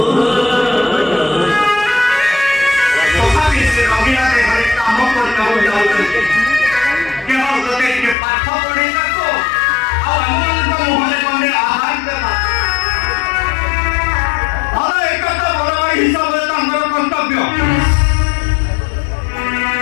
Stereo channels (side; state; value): right; drops out; at 8.2 s